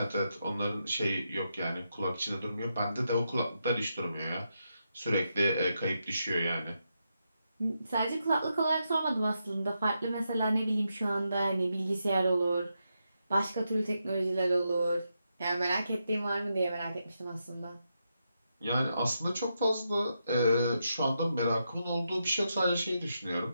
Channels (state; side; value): inverted; both; correlation -0.84